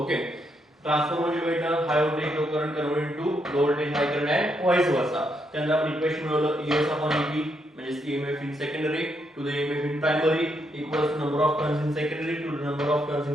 Transformer जे भेटणार, high voltage low current convert to low voltage high current आहे, व्हाईस वर्सा. त्यानंतर आपण इक्वेशन मिळवलं, ईएस अपॉन ईपी म्हणजे EMF in secondary to the EMF in primary equals to number of turns in secondary to the number of turns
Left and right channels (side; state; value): both; normal; correlation 0.78